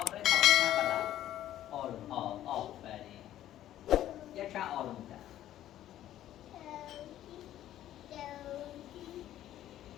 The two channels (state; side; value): quieter; right; 12.6 dB